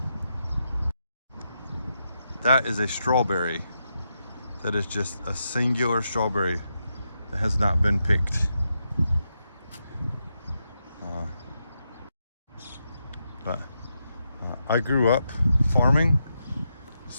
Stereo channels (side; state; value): both; inverted; correlation -0.84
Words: That is a strawberry. That is just a singular strawberry that has not been picked. But I grew up farming,